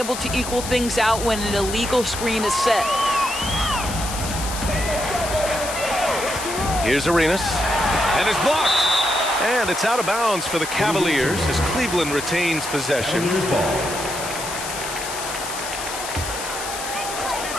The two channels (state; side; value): noise; left; hiss, 7 dB below the sound